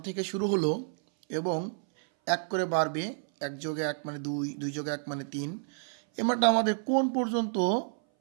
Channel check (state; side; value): silent; left; 58 dB below the other